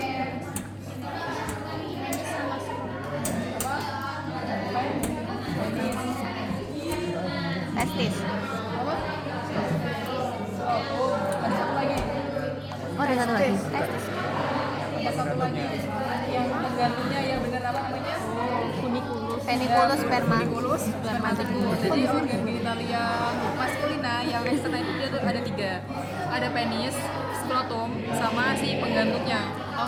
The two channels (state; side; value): identical; both; correlation 1.00